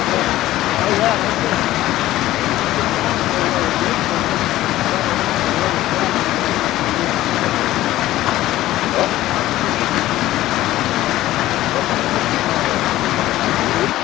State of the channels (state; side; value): quieter; right; 15.2 dB